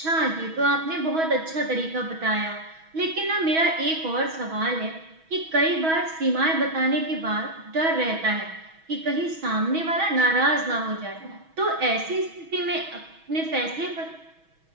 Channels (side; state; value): left; late; 6.2 ms